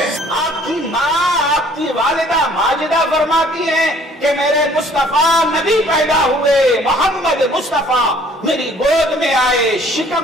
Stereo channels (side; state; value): both; normal; correlation 0.57